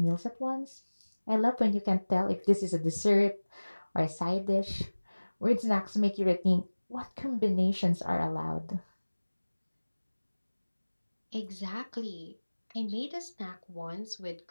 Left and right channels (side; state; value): both; inverted; correlation -1.00